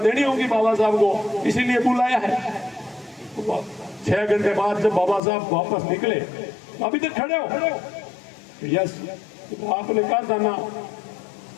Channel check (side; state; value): right; drops out; at 5.2 s